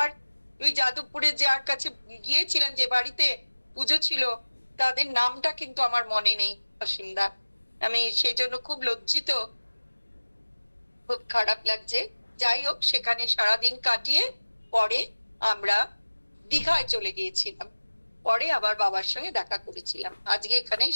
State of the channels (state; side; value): inverted; both; correlation -1.00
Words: ওই যাদবপুরে যার কাছে গিয়েছিলেন, যে বাড়িতে পুজো ছিল, তাদের নামটা কিন্তু আমার মনে নেই অসীমদা। আমি সেই জন্য খুব লজ্জিত, খুব খারাপ লাগছে। যাই হোক, সেখানে সারাদিন কাটিয়ে পরে আমরা দীঘায় চলে গিয়েছিলাম, পরে আবার বাবার সঙ্গে দেখা করেছিলাম। আজকে এখানেই